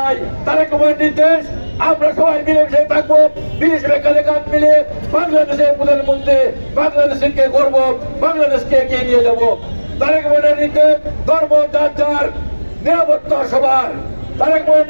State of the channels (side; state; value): both; inverted; correlation -1.00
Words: তারেক রহমানের নির্দেশ আমরা সবাই মিলেমিশে থাকবো, মিলেমিশে কাঁধে কাঁধ মিলে বাংলাদেশের প্রধানমন্ত্রী বাংলাদেশকে গর্ব, বাংলাদেশকে এগিয়ে নিয়ে যাবো। তারেক রহমানের নির্দেশ ধর্ম যার যার, নিরাপত্তা সবার। তারেক রহমানের